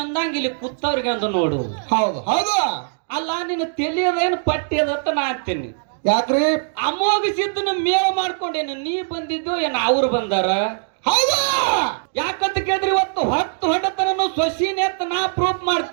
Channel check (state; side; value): silent; left; digital silence